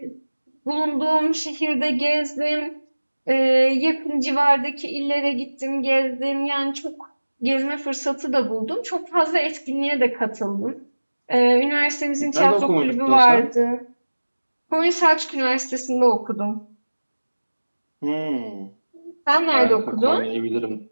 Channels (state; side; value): inverted; both; correlation -1.00